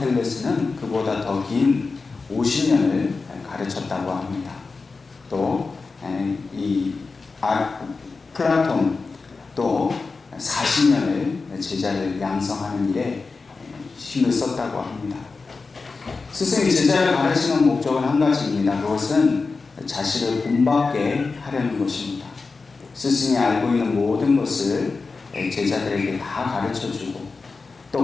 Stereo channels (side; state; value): right; quieter; 4.2 dB